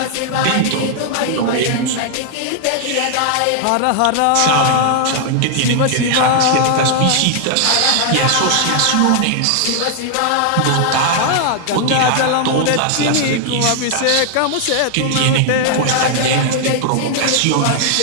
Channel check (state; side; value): different; both; correlation 0.00